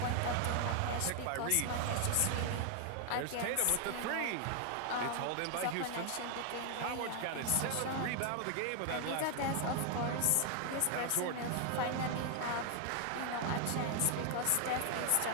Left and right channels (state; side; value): different; both; correlation 0.00